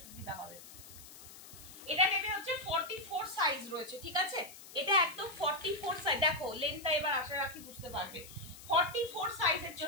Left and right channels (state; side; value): noise; left; hiss, 17 dB below the sound